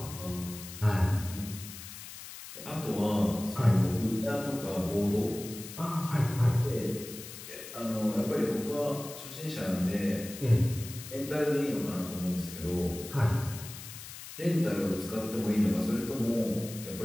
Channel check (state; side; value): noise; left; hiss, 13 dB below the sound